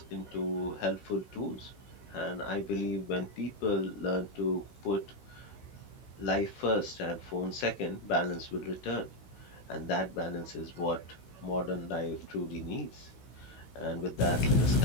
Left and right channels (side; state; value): right; late; 16 ms